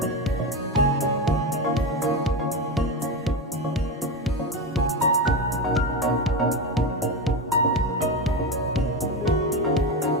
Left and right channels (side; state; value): both; normal; correlation 0.17